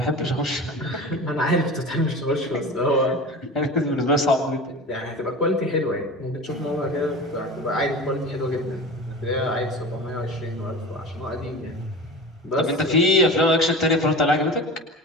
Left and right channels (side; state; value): both; normal; correlation 0.32